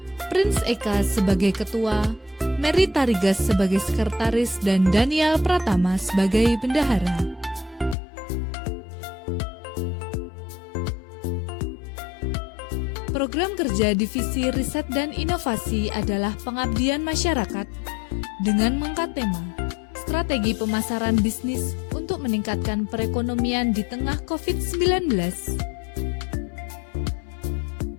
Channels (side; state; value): right; drops out; at 8.0 s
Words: Prince Eka sebagai Ketua, Mary Tarigas sebagai Sekretaris, dan Daniel Pratama sebagai Bendahara. Program kerja Divisi Riset dan Inovasi adalah pengabdian masyarakat dengan mengangkat tema strategi pemasaran bisnis untuk meningkatkan perekonomian di tengah COVID-19.